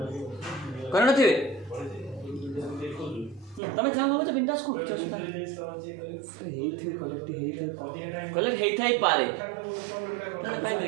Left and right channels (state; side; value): drops out; left; at 3.6 s